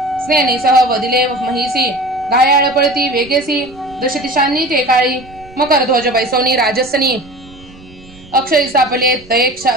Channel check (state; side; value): noise; right; rumble, 22 dB below the sound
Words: स्नेनीसह वदिले महिसी घायाळ पळती वेगेसी दशदिशांनी ते काळी मकर ध्वज बैसवनी राजसनी अक्षरी सापले तये